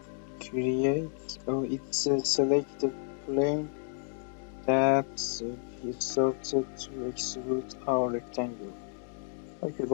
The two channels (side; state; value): right; silent; digital silence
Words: create it's select the plane that we started to extrude our rectangle. Okay,